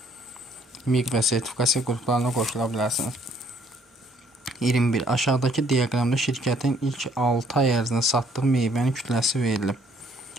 Miq və sertifikasiya qruplarına qoşula bilərsiniz. 21. Aşağıdakı diaqramda şirkətin ilk 6 ay ərzində satdığı meyvənin kütləsi verilib.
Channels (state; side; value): normal; both; correlation 0.63